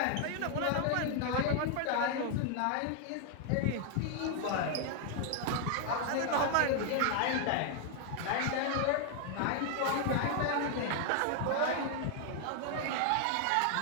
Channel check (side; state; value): both; different; correlation 0.00